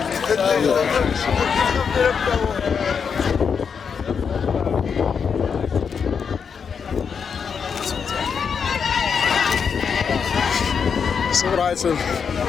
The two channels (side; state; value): right; quieter; 6.4 dB